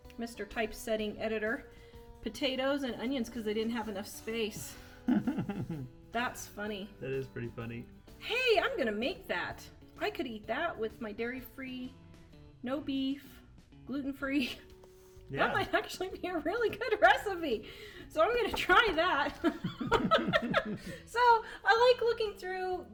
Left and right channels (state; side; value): identical; both; correlation 1.00